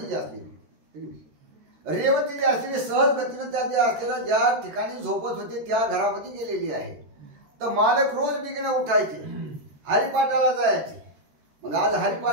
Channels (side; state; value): left; late; 13 ms